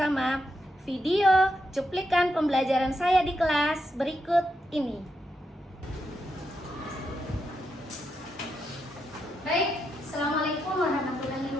video cuplikan pembelajaran saya di kelas berikut ini. Baik, Assalamualaikum warahmatullahi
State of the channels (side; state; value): both; normal; correlation 0.84